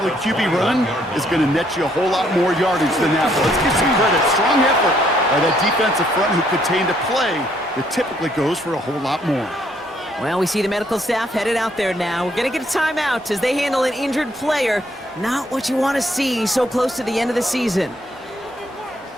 QB run is going to net you a whole lot more yardage than that. But let's give some credit. Strong effort by that defensive front who contained a play that typically goes for a whole lot more. Well, we see the medical staff headed out there now. We're going to get a timeout as they handle an injured player. Not what you want to see so close to the end of the season.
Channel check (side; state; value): both; normal; correlation 0.69